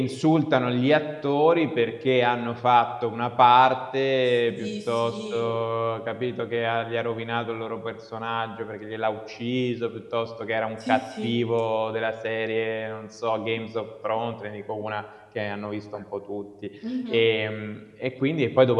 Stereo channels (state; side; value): identical; both; correlation 1.00